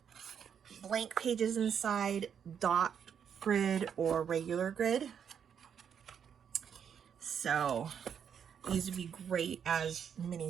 blank pages inside, dot grid, or regular grid. So these would be great as mini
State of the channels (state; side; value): quieter; left; 7.8 dB